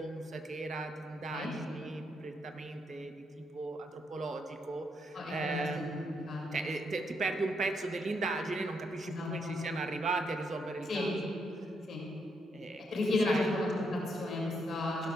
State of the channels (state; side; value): normal; both; correlation 0.77